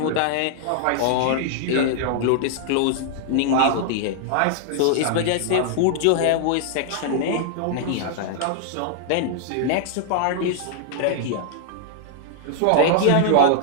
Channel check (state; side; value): different; both; correlation -0.01